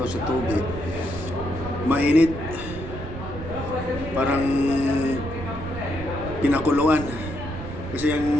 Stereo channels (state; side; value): noise; right; rumble, 9 dB below the sound